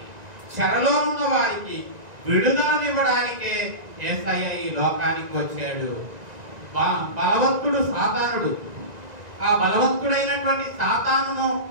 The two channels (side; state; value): left; late; 1.9 ms